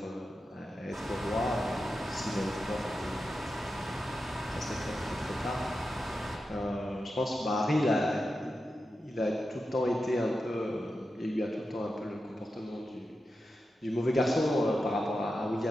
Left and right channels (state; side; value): normal; both; correlation 0.90